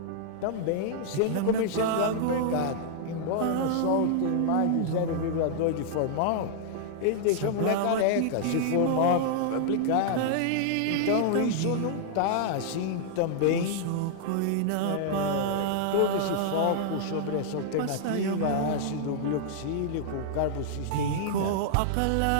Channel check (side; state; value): both; different; correlation -0.01